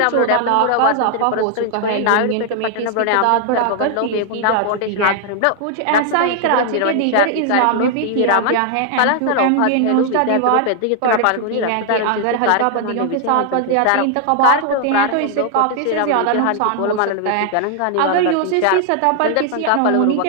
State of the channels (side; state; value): both; different; correlation 0.00